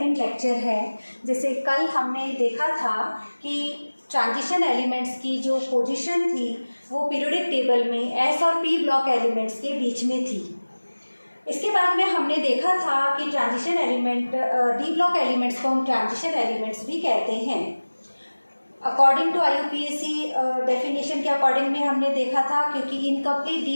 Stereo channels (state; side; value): inverted; both; correlation -1.00